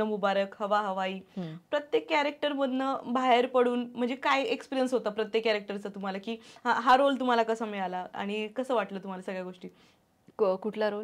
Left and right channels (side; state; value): both; identical; correlation 1.00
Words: मुबारक, हवा हवाई. प्रत्येक कॅरेक्टर मधनं बाहेर पडून म्हणजे काय एक्सपिरियन्स होता प्रत्येक कॅरेक्टरचा तुम्हाला, की हा रोल तुम्हाला कसा मिळाला आणि कसं वाटलं तुम्हाला सगळ्या गोष्टी? कुठला